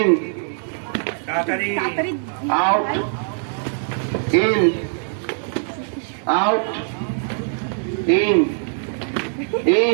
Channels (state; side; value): silent; left; 64 dB below the other